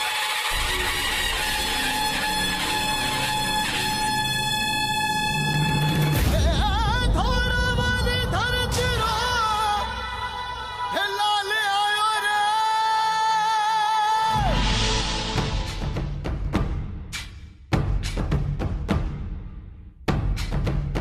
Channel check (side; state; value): both; identical; correlation 1.00